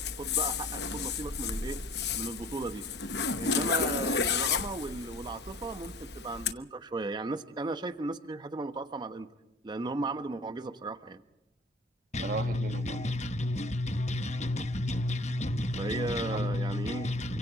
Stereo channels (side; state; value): both; normal; correlation 0.49